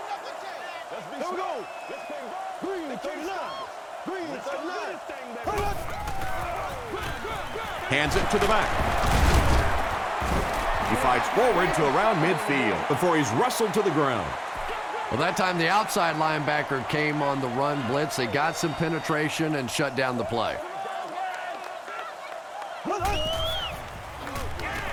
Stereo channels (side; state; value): both; identical; correlation 1.00